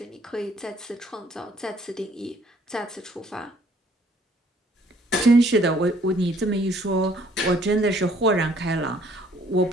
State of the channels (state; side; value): normal; both; correlation 0.61